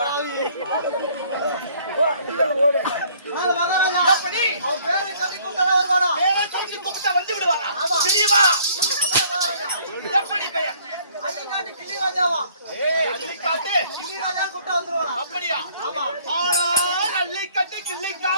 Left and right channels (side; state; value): both; inverted; correlation -0.59